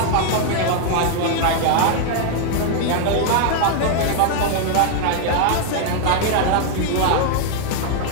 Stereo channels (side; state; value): both; different; correlation 0.00